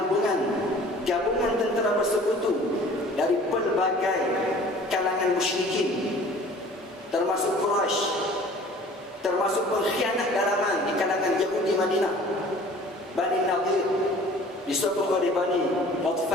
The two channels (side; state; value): both; normal; correlation 0.48